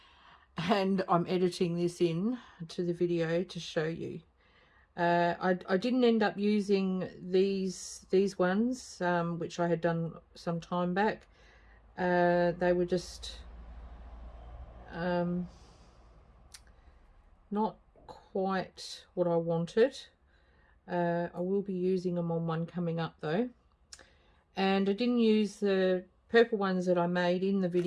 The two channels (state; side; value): identical; both; correlation 1.00